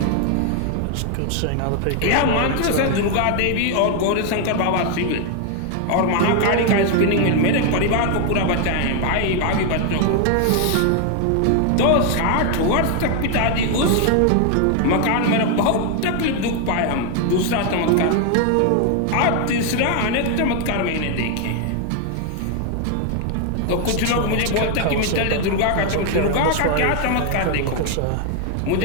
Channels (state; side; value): different; both; correlation 0.00